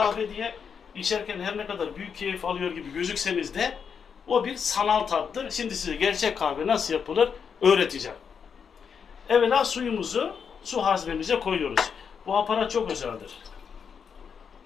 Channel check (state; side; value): quieter; right; 6.7 dB